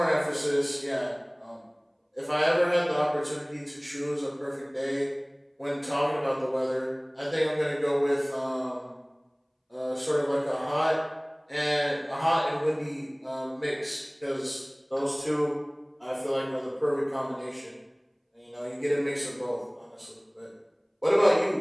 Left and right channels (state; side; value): identical; both; correlation 1.00